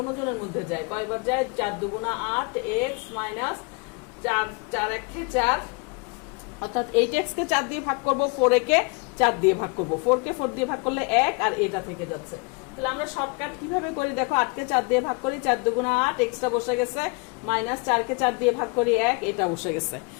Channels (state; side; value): quieter; right; 32.0 dB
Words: মধ্যে যায়, কয়বার যায়? 4 দুগুণা 8, x মাইনাস 4, 4 1 4, অর্থাৎ 8x কে 4 দিয়ে ভাগ করব, 4a কে 4 দিয়ে ভাগ করব, 4 কে 4 দিয়ে ভাগ করলে 1, আর এটা থেকে যাচ্ছে। তাহলে আমরা শর্টকাট কিভাবে করি দেখো, 8 কে 4 দিয়ে ভাগ করি, 4 দুগুণা 8, এক্সটা বসে গেছে, মাইনাস 4 কে 4 দিয়ে ভাগ করি 1, এটা বসে গেছে।